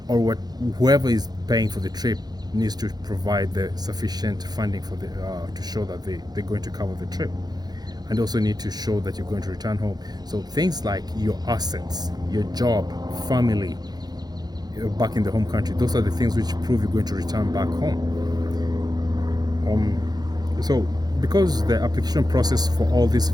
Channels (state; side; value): late; left; 0.19 ms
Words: or whoever is paying for the trip needs to provide the sufficient funding for the to show that they're going to cover the trip, and also need to show that you're going to return home. So things like your assets, your job, family back in the home country, those are the things which prove you're going to return back home. So because the application process for all these